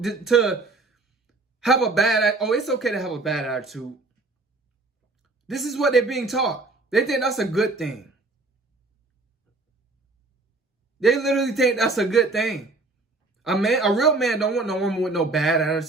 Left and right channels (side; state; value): left; quieter; 3.5 dB